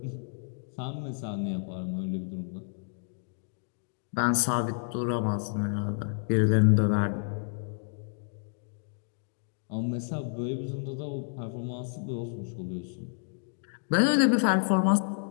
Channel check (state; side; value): silent; right; digital silence